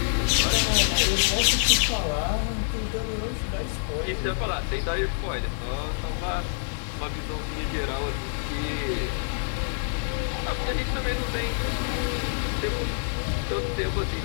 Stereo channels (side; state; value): right; silent; digital silence